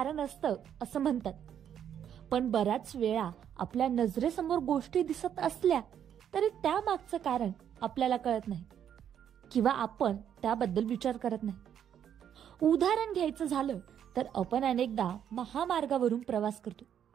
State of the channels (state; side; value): quieter; left; 9.2 dB